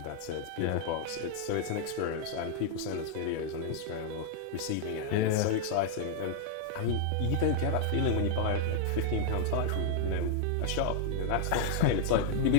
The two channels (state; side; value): different; both; correlation 0.00